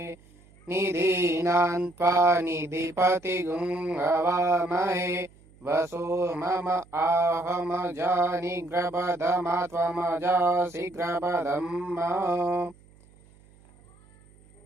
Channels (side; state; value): right; noise; hum, 27 dB below the sound